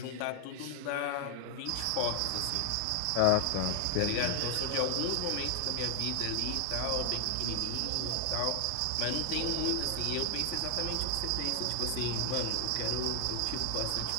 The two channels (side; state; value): both; different; correlation 0.00